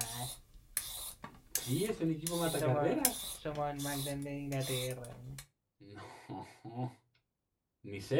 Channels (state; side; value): identical; both; correlation 1.00